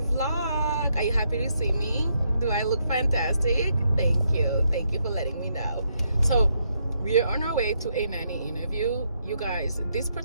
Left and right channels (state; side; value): inverted; both; correlation -0.77